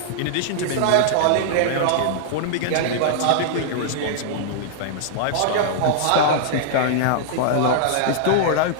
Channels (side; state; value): both; different; correlation -0.01